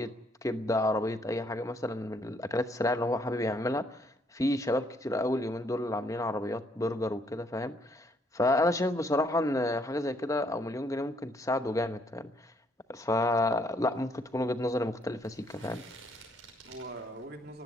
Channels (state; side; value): normal; both; correlation 0.68